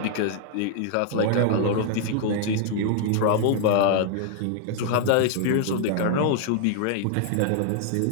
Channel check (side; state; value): both; different; correlation 0.00